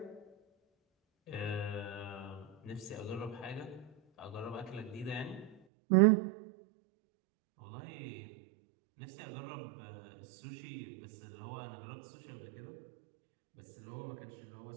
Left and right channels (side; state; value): left; drops out; at 5.6 s